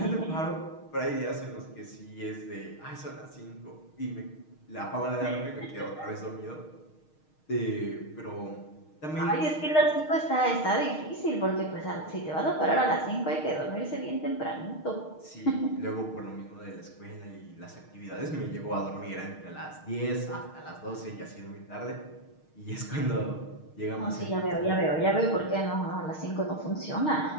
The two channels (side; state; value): right; late; 6.4 ms